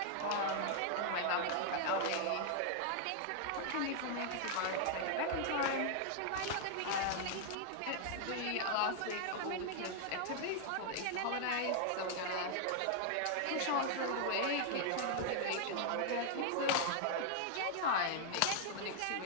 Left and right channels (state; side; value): different; both; correlation 0.00